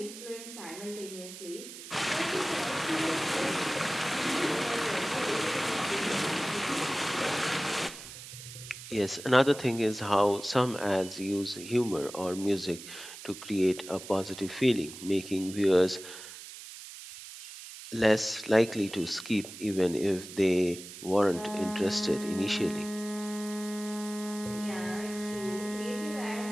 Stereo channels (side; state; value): right; noise; hiss, 13 dB below the sound